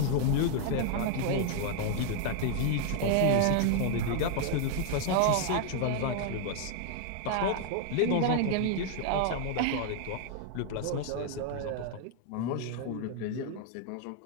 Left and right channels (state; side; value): different; both; correlation 0.00